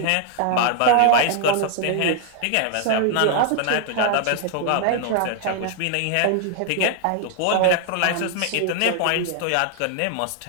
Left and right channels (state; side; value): different; both; correlation 0.00